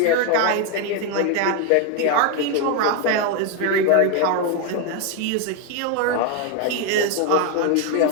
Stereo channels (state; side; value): different; both; correlation 0.01